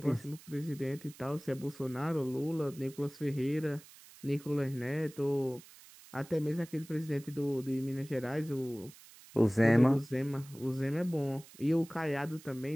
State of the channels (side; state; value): right; noise; hiss, 21 dB below the sound